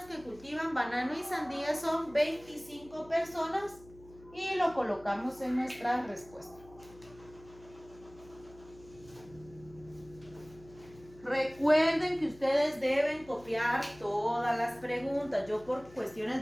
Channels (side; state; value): left; noise; hum, 22 dB below the sound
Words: que cultivan banano y sandía son 25 personas y lo colocamos en nuestra respuesta. Recuerden que ustedes deben copiar todas las preguntas. Yo por cuestiones